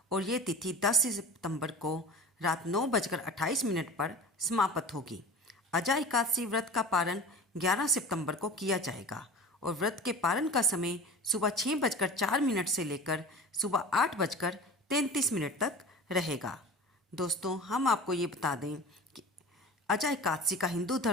और ये तिथि 10 सितंबर को रात 9:28 पर समाप्त होगी। अजा एकादशी व्रत का पारण 11 सितंबर को किया जाएगा और व्रत के पारण का समय सुबह 6:04 से लेकर सुबह 8:33 तक रहेगा। दोस्तों, हम आपको ये बता दें कि अजा एकादशी का हिंदू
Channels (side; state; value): both; normal; correlation 0.36